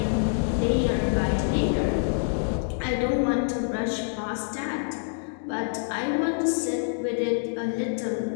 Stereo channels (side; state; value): right; silent; digital silence